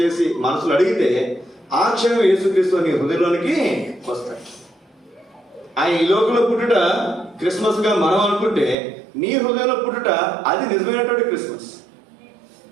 మనసులో అడిగితే ఆ క్షణం యేసుక్రీస్తు నీ హృదయంలోనికి వస్తాడు. ఆయన ఈ లోకంలో పుట్టుట క్రిస్మస్ గా మనం అనుకుంటే, నీ హృదయంలో పుట్టుట అది నిజమైనటువంటి క్రిస్మస్.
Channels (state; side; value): drops out; left; at 8.8 s